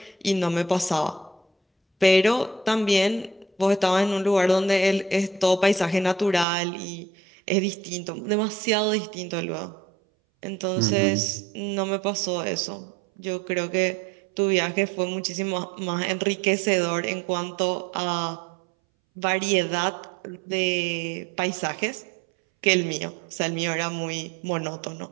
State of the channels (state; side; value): drops out; left; at 6.5 s